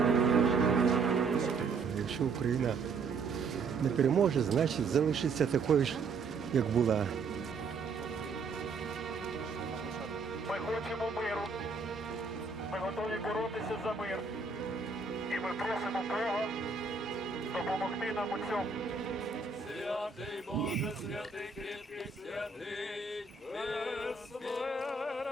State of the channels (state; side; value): quieter; left; 4.7 dB